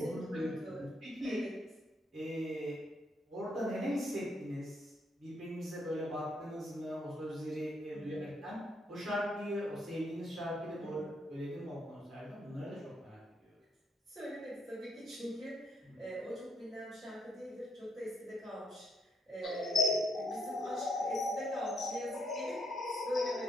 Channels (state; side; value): normal; both; correlation 0.73